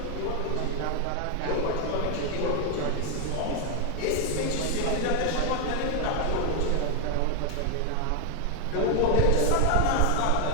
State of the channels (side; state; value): both; different; correlation 0.01